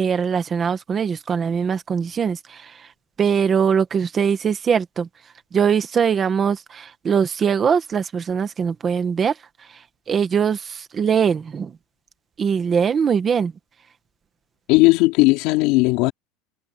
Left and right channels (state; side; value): normal; both; correlation 0.58